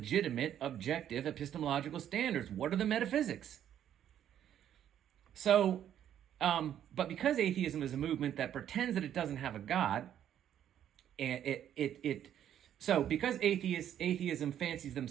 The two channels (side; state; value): left; quieter; 10.3 dB